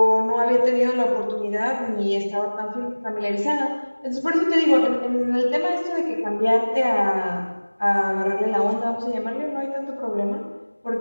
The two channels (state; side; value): inverted; both; correlation -1.00